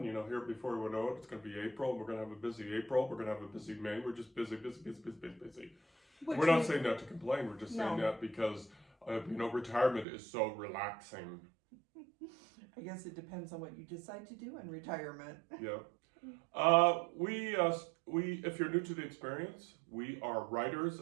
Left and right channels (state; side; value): drops out; left; at 10.1 s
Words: Here before we know it, it's going to be April. We're going to have a busy April. We're going to have a busy May. We're just busy. We're not saying that to complain. We're just saying that because, retirement is so relaxing. I guess it depends on what you decide to do in retirement. Yeah. We if you're new to the experience, we are writers